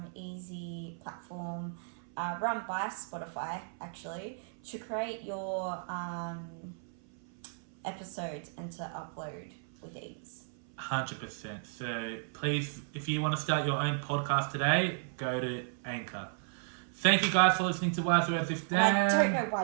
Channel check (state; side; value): silent; left; 55 dB below the other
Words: easy platform run by Spotify, actually, to create your episodes and to upload with ease. 100%. So please, if you want to start your own podcast today, go to Anchor. Thank you guys for listening to Wise Words with Dan. I don't know why